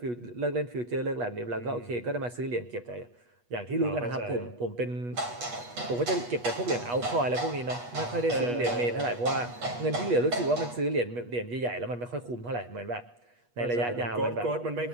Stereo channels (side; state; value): left; late; 8.3 ms